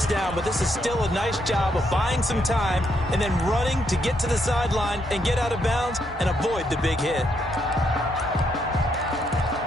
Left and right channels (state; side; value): normal; both; correlation 0.76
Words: down, but this is still a nice job of buying some time and then running to get to the sideline and get out of bounds and avoid the big hit.